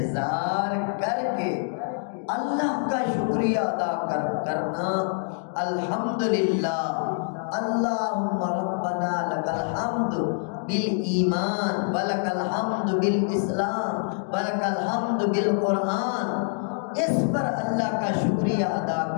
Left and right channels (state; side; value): silent; right; 61 dB below the other